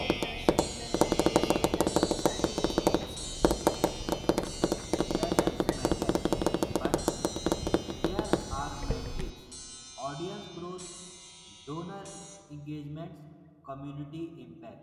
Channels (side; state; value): both; identical; correlation 1.00